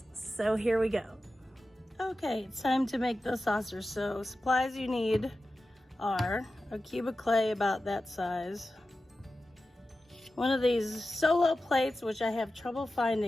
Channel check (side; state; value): both; normal; correlation 0.93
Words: So here we go. Okay, it's time to make the saucer. So supplies you need are a cube of clay about that size, one of these solo plates, which I have trouble